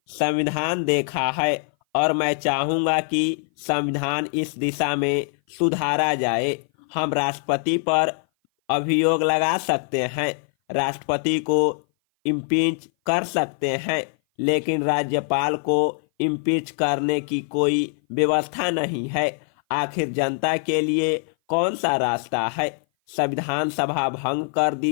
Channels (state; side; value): silent; right; 57 dB below the other